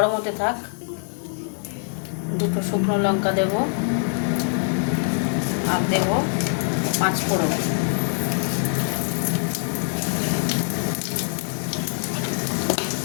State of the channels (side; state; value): right; silent; 61 dB below the other